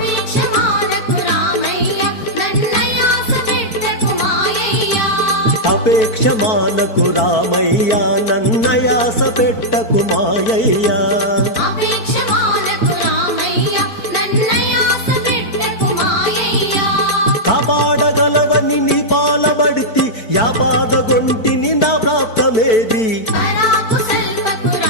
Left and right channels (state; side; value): late; right; 4.5 ms